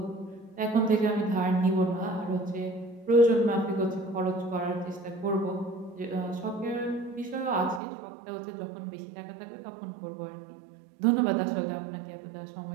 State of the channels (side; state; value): left; drops out; at 7.8 s